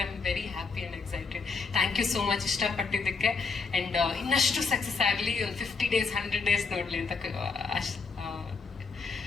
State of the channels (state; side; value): quieter; right; 4.7 dB